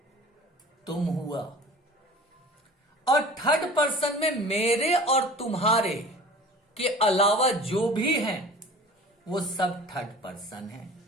तुम हुआ। और थर्ड पर्सन में मेरे और तुम्हारे के अलावा जो भी हैं वो सब थर्ड पर्सन है।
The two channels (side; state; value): both; normal; correlation 0.41